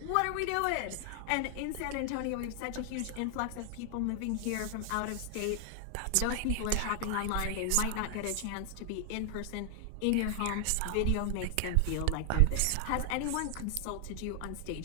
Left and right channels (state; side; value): different; both; correlation 0.00